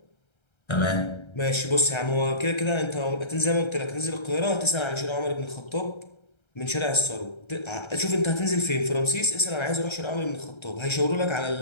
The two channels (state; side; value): late; right; 1.3 ms